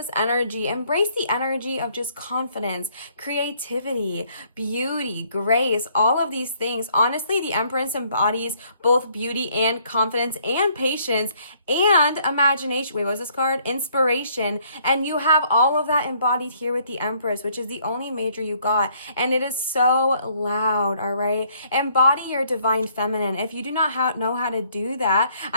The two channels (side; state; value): both; inverted; correlation -0.65